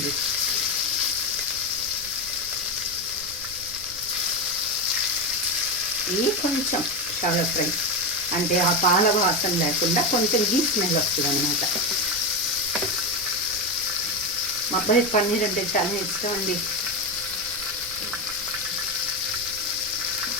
ఇది కొంచెం షాలో ఫ్రై అంటే ఆ పాల వాసన లేకుండా కొంచెం గీ స్మెల్ వస్తుంది అనమాట. మా అబ్బాయి పన్నీర్ అంటే చాలా ఇష్టం అండి.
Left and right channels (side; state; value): right; noise; rumble, 18 dB below the sound